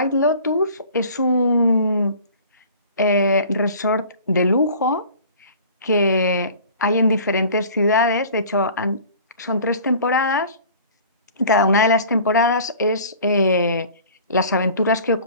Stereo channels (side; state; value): both; inverted; correlation -0.46